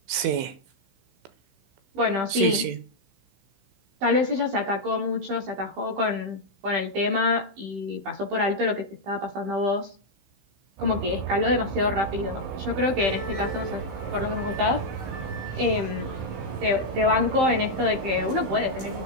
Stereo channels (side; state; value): left; late; 16 ms